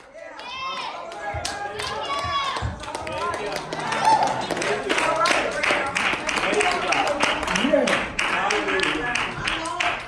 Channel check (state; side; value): identical; both; correlation 1.00